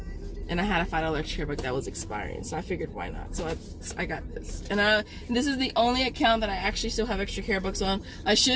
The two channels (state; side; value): identical; both; correlation 1.00